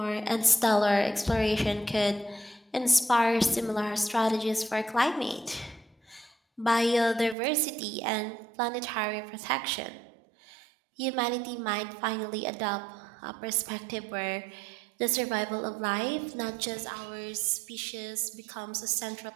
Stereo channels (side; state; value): left; drops out; at 7.4 s